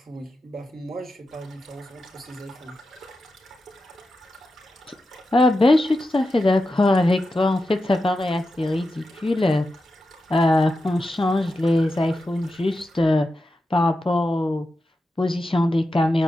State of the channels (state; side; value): normal; both; correlation 0.90